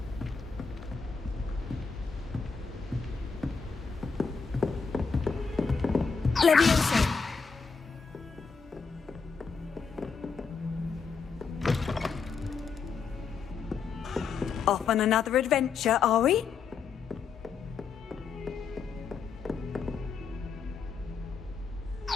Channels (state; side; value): quieter; right; 5.4 dB